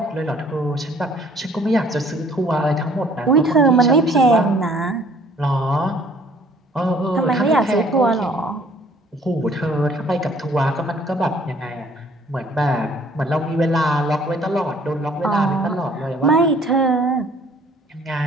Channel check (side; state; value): both; normal; correlation 0.58